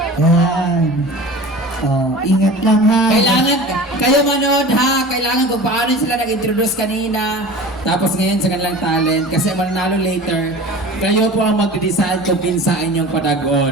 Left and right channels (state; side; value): normal; both; correlation 0.37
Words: Yan. Oh, ingat lang ha. Kailangan, kayo manood ha, kailangan kung paano sila nag-introduce kanina, tapos ngayon sa kanilang talent, kasi mananalo later, kayo po ang mag-decide kung pinsa inyong